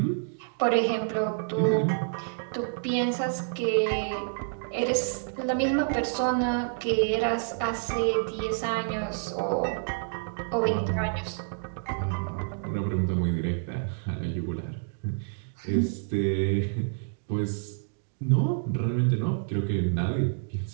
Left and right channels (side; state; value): left; silent; digital silence